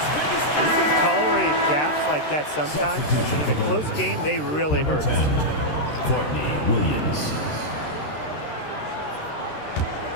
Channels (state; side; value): late; right; 13 ms